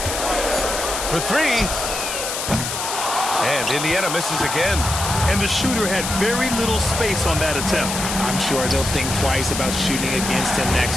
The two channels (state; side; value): noise; left; hiss, 4 dB below the sound